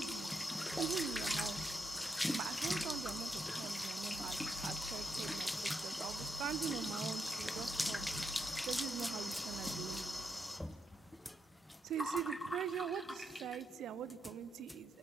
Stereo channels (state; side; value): normal; both; correlation 0.82